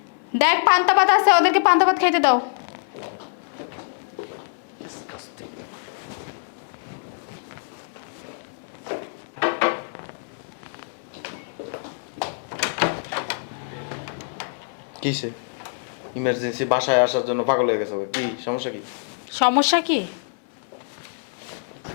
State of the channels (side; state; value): right; silent; digital silence